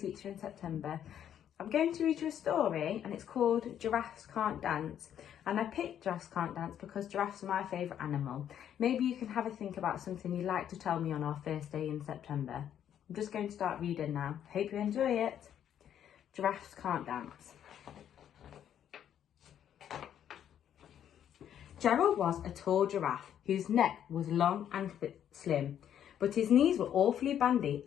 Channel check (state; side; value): quieter; right; 9.8 dB